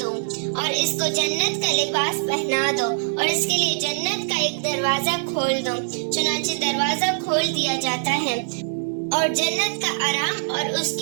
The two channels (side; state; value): left; silent; digital silence